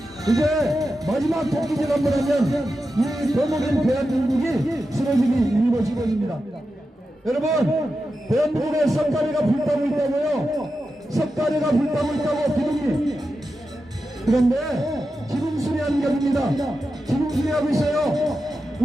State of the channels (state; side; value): normal; both; correlation 0.90